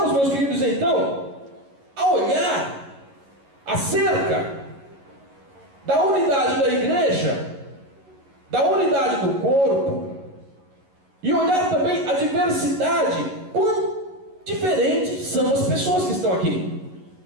meus queridos, então, a olhar acerca da unidade da igreja, da unidade do corpo, e olhar também a diversidade, quão diferentes são as pessoas que estão aqui.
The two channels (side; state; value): left; late; 11 ms